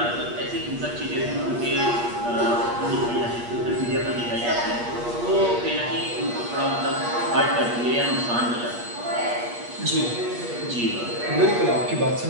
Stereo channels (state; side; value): late; left; 8.4 ms